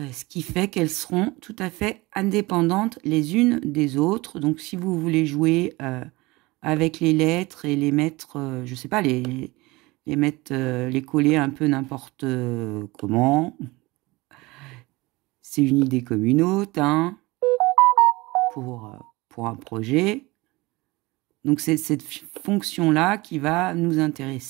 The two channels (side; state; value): left; quieter; 22.1 dB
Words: qui fait qu'elles seront tout à fait indépendantes les unes des autres. Donc, si vous voulez jouer avec les lettres et les mettre, je sais pas, les mettre, les coller un peu n'importe comment, c'est une idée comme une autre, hein, pour un projet. Donc, c'est cette fonction-là qui va nous